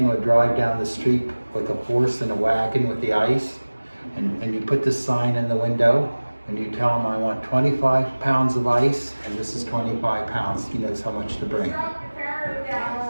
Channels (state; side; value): inverted; both; correlation -1.00